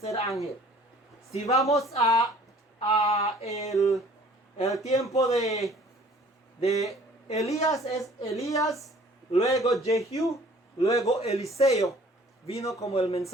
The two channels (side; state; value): both; normal; correlation 0.53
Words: ángel. Si vamos a el tiempo de Elías, es Elías, luego Jehú, Luego Eliseo vino como el